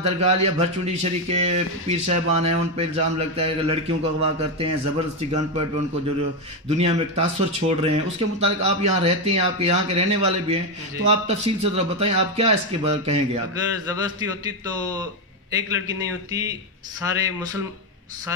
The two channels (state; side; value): normal; both; correlation 0.08